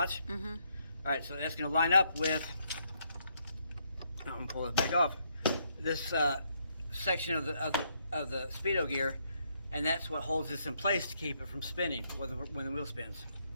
All right, so that's going to line up with, I'm going to pull it back off, this section of the Speedo gear, and that's what holds this in place to keep it from spinning when the wheel spins.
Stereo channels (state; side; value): inverted; both; correlation -0.74